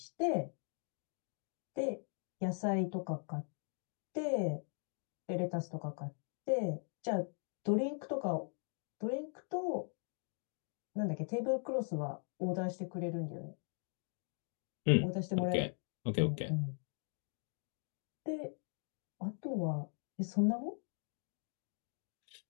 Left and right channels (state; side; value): silent; right; 51 dB below the other